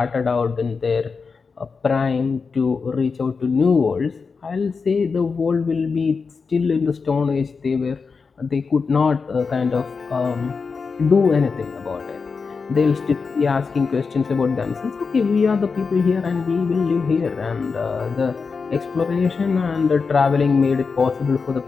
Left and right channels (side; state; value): right; quieter; 5.0 dB